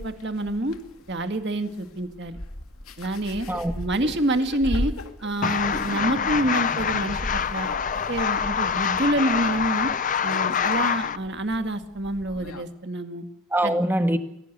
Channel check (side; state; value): both; normal; correlation 0.32